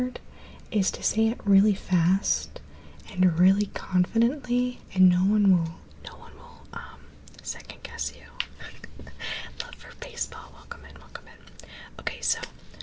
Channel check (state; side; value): identical; both; correlation 1.00